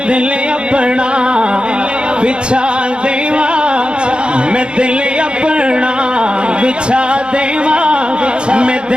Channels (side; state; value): left; late; 0.053 ms